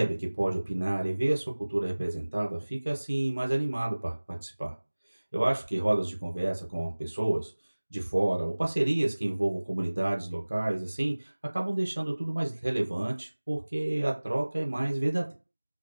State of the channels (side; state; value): both; inverted; correlation -1.00